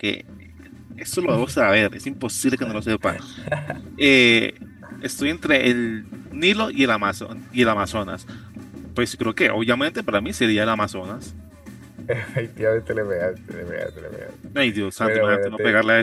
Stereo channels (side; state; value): both; identical; correlation 1.00